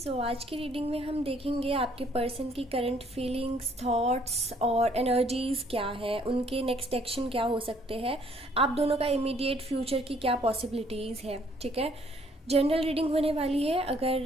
आज की reading में हम देखेंगे आपके पर्सन की करंट फीलिंग्स, थॉट्स और एनर्जीज क्या है, उनके नेक्स्ट एक्शन क्या हो सकते हैं, आप दोनों का इमीडिएट फ्यूचर की क्या पॉसिबिलिटीज़ है। ठीक है, जनरल रीडिंग होने वाली है।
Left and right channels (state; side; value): normal; both; correlation 0.63